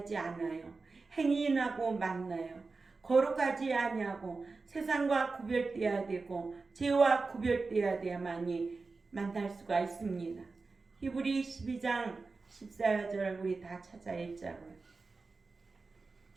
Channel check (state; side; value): quieter; left; 4.0 dB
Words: 않아요. 행인하고 만나요. 거룩하지 아니하고 세상과 구별되어야 되고 죄와 구별되어야 돼야만이 만날 수가 있습니다. 히브리 12장 14절 우리 다 찾아 읽자고요.